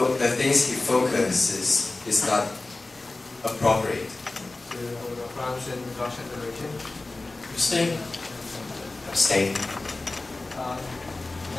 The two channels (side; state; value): right; quieter; 3.2 dB